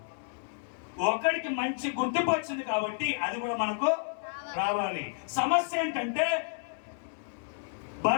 ఒకడికి మంచి గుర్తింపు వచ్చింది కాబట్టి అది కూడా మనకు రావాలి. సమస్య ఏంటంటే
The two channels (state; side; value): silent; right; 57 dB below the other